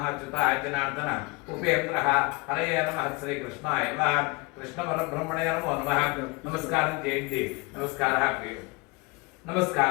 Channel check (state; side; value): quieter; right; 26.3 dB